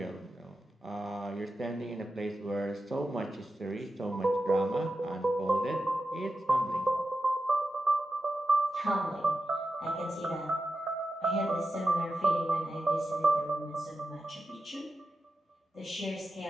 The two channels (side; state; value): both; normal; correlation 0.91